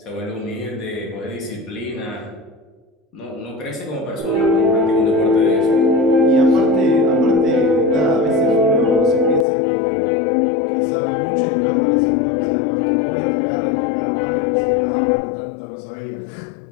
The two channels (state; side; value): drops out; right; at 9.5 s